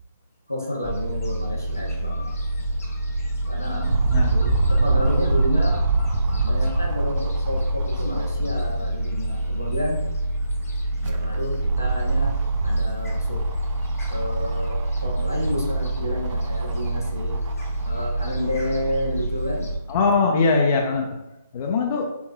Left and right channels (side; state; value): both; inverted; correlation -0.77